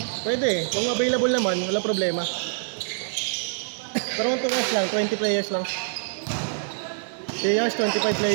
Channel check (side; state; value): left; silent; digital silence